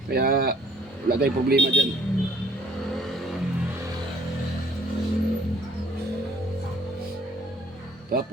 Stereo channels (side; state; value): both; normal; correlation 0.60